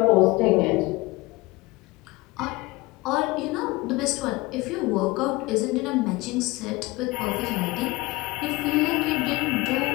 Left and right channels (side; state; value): right; quieter; 22.0 dB